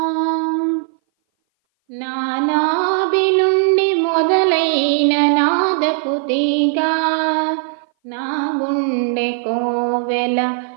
నానాభి నుండి మొదలైన నాదపు తీగ నా గుండె కోవెల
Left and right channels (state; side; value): silent; left; 59 dB below the other